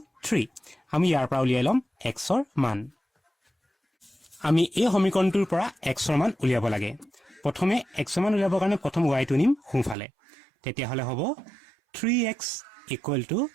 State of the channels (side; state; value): left; drops out; at 10.0 s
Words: 3 আমি ইয়াৰ পৰা উলিয়াই লম x ৰ মান আমি এই সমীকৰণটোৰ পৰা x ৰ মান উলিয়াব লাগে প্ৰথমে x ৰ মান উলিয়াবৰ কাৰণে প্ৰথম y টো নিম সোঁফালে তেতিয়া হলে হ'ব 3x =